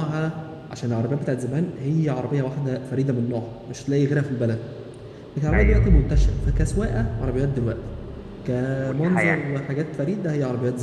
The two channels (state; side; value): identical; both; correlation 1.00